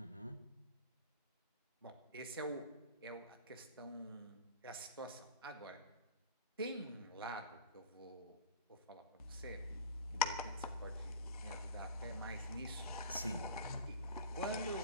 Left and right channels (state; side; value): inverted; both; correlation -0.38